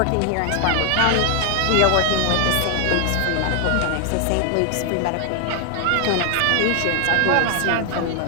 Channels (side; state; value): both; different; correlation 0.00